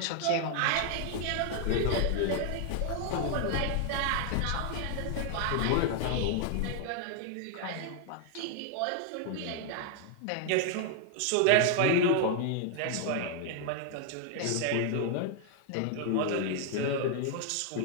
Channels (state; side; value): different; both; correlation 0.00